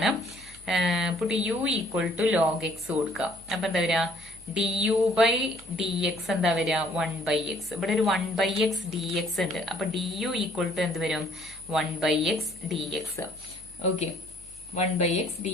Put u equal to log x കൊടുക്കാം. അപ്പൊ എന്താ വരിക, du by dx എന്താ വരിക 1 by x. ഇവിടെ ഒരു 1 by x dx ഉണ്ട്. അപ്പൊ du ഈക്വൽ ടു എന്ത് വരും 1 by x dx. Okay, 1 by x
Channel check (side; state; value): left; noise; hum, 23 dB below the sound